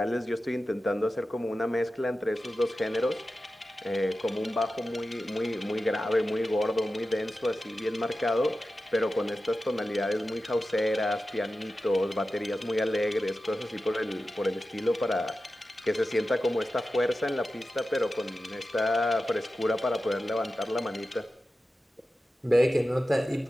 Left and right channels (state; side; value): normal; both; correlation 0.93